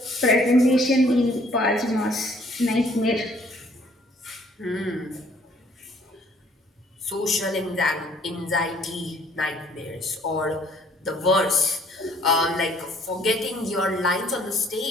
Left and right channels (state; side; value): normal; both; correlation 0.61